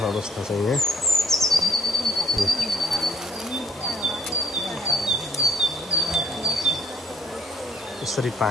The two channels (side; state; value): both; normal; correlation 0.63